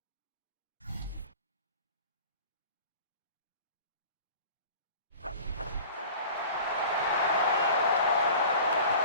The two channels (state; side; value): inverted; both; correlation -0.42